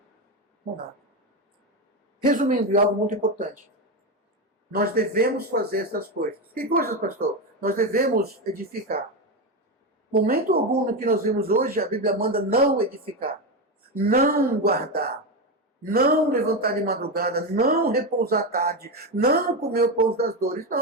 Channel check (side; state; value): both; normal; correlation 0.13